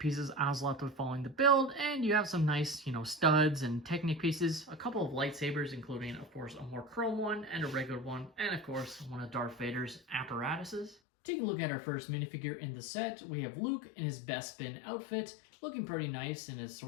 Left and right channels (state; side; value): drops out; right; at 11.0 s